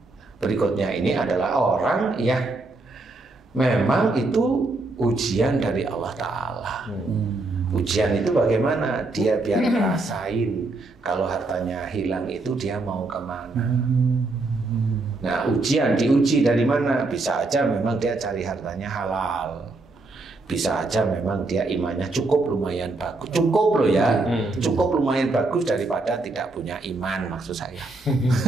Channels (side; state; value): left; quieter; 3.2 dB